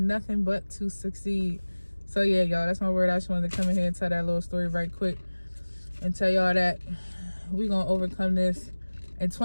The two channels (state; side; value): inverted; both; correlation -1.00